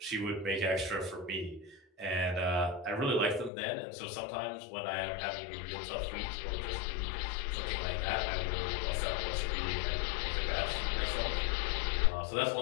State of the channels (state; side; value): drops out; right; at 3.5 s